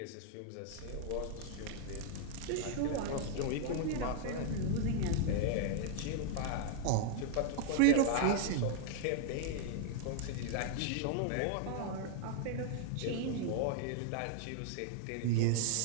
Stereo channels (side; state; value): both; different; correlation 0.00